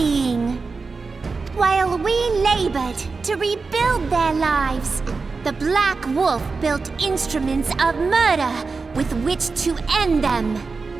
While we labored to rebuild their lives, the Black Wolf built instruments of murder with which to end them.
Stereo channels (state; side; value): quieter; left; 4.3 dB